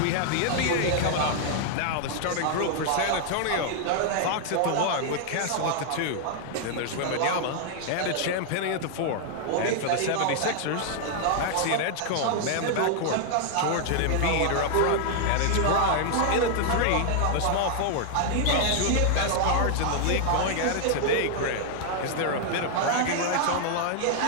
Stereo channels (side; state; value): both; different; correlation 0.00